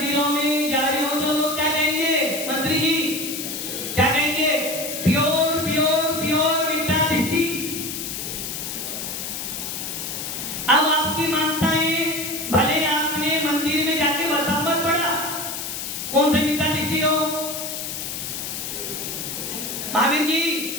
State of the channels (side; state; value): left; noise; hiss, 5 dB below the sound